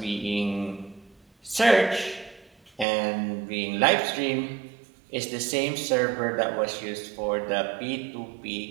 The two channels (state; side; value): drops out; left; at 2.9 s